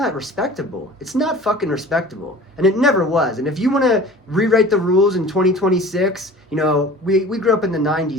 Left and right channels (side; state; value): both; normal; correlation 0.42